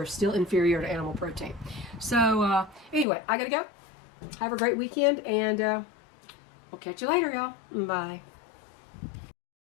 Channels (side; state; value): right; drops out; at 3.1 s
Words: still inferior to animal protein. So anyway, I gotta go. Have a great weekend, and we'll catch you later, y'all. Bye.